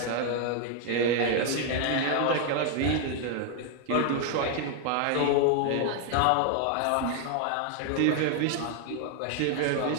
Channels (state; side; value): different; both; correlation 0.00